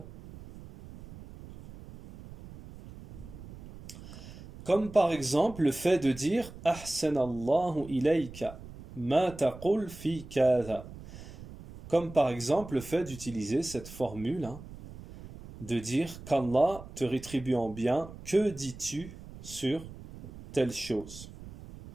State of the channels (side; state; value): right; noise; rumble, 15 dB below the sound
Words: Comme par exemple le fait de dire Ahsanallahu ilayka ma taqul fi kadha. Comme par exemple le fait d'utiliser cette formule, de dire qu'Allah te rétribue en bien, que dis-tu sur telle chose.